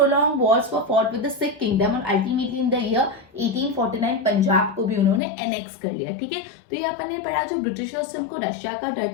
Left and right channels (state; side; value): drops out; right; at 5.2 s